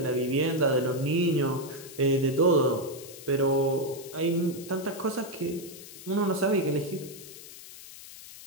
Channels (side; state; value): left; noise; hiss, 16 dB below the sound